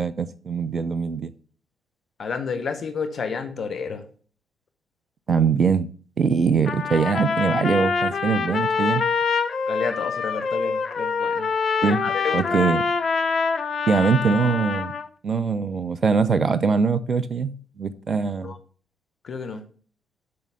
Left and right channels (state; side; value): normal; both; correlation 0.70